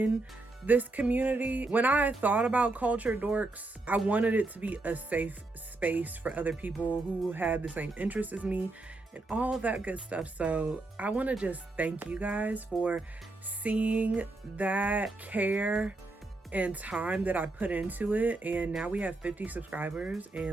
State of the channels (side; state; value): left; quieter; 3.1 dB